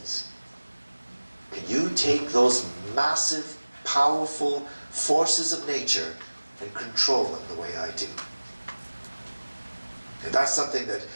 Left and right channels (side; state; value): both; inverted; correlation -1.00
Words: Can you take those massive, powerful forces of nature and control them the way I do? And that's something that